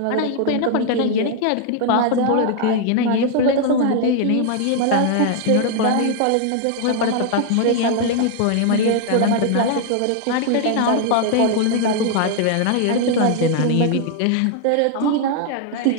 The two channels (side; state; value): both; different; correlation 0.00